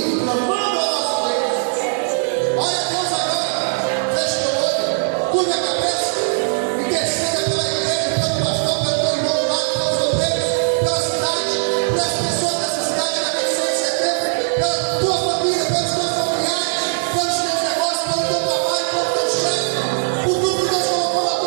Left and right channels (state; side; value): silent; left; digital silence